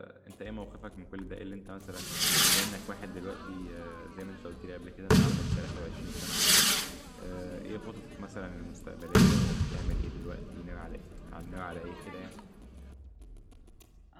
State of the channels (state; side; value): identical; both; correlation 1.00